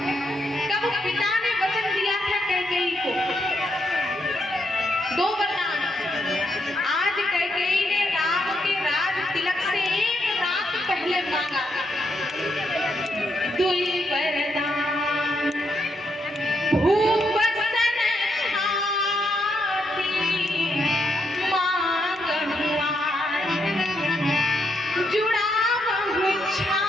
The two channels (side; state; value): both; normal; correlation 0.79